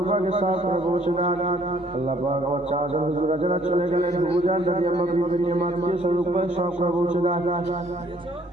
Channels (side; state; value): both; normal; correlation 0.62